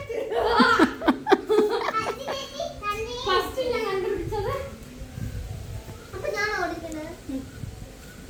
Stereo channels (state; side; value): identical; both; correlation 1.00